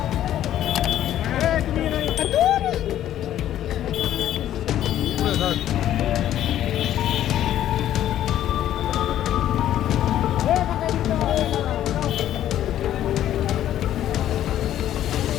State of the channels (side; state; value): right; quieter; 11.9 dB